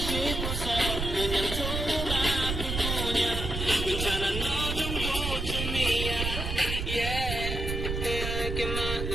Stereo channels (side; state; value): right; noise; rumble, 3 dB below the sound